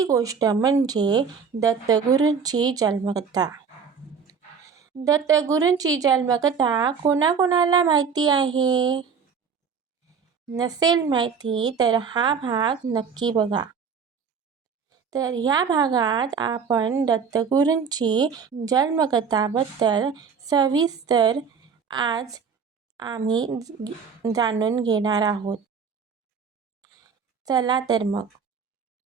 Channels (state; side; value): quieter; left; 6.1 dB